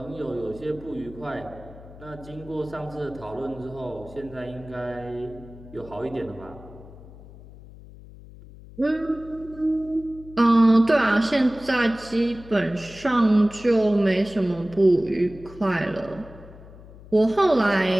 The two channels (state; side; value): noise; left; hum, 19 dB below the sound